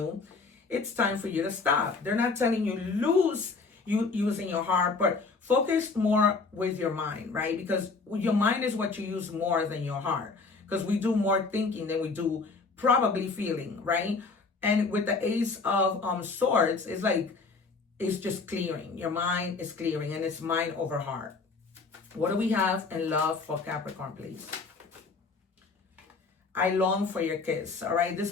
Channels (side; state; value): right; quieter; 4.3 dB